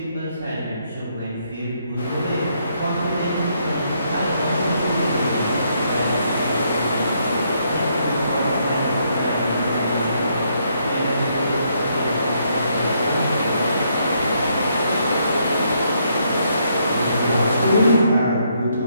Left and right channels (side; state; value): both; inverted; correlation -0.73